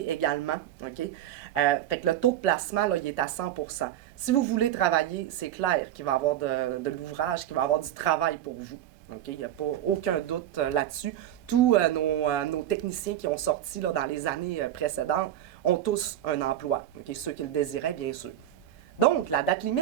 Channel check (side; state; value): left; quieter; 11.8 dB